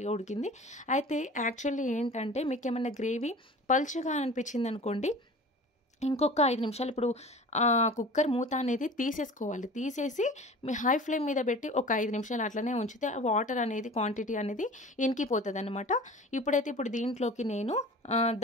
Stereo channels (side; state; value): both; normal; correlation 0.40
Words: ఉడికింది. అయితే యాక్చువల్లీ ఏంటంటే మీకు ఏమన్నా గ్రేవీ పల్చగా అనిపించింది అనుకోండి, ఇంకొక 5 నిమిషాలు ఇప్పుడు కుక్కర్ మూత అనేది తీసేసుకోవాలి. తీసేసి మీ హై ఫ్లేమ్ మీద పెట్టి ఒక 5 నిమిషాలు అట్లనే ఉంచితే వాటర్ అనేది క్వాంటిటీ అనేది ఇంకిపోతుంది అనమాట. ఇప్పుడు దీంట్లోకి నేను